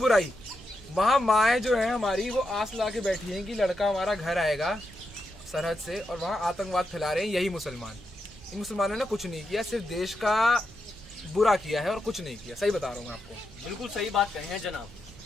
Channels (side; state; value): both; normal; correlation 0.85